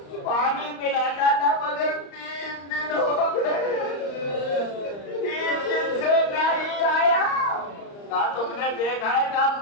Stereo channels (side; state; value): right; late; 35 ms